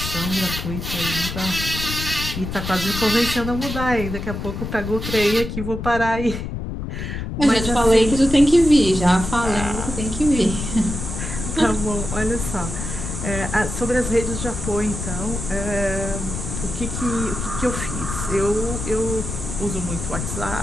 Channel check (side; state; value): left; noise; rumble, 6 dB below the sound